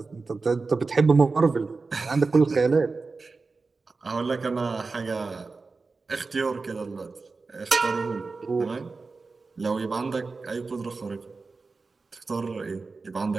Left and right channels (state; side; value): quieter; left; 4.1 dB